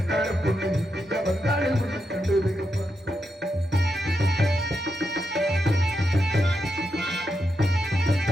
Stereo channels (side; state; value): both; normal; correlation 0.84